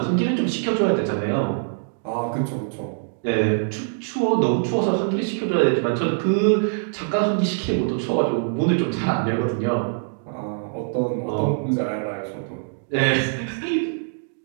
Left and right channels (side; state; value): left; silent; digital silence